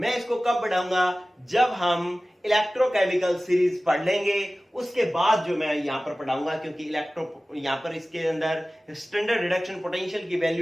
इसको कब पढ़ाऊंगा, जब हम इलेक्ट्रोकेमिकल सीरीज पढ़ लेंगे, उसके बाद जो मैं यहां पर पढ़ाऊंगा। क्योंकि यहां पर इसके अंदर स्टैंडर्ड रिडक्शन पोटेंशियल की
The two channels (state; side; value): normal; both; correlation 0.97